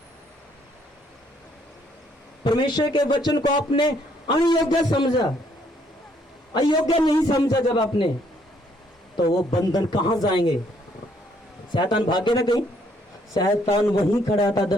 परमेश्वर के वचन को आपने अयोग्य समझा, अयोग्य नहीं समझा। जब आपने, तो वो बंधन कहां जाएंगे? शैतान भागे ना कहीं। शैतान वहीं खड़ा था,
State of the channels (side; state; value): both; normal; correlation 0.68